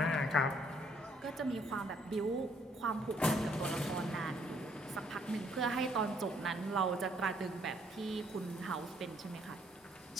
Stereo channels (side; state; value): both; normal; correlation 0.67